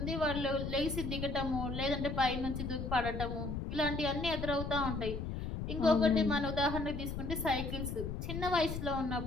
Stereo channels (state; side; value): noise; left; rumble, 4 dB below the sound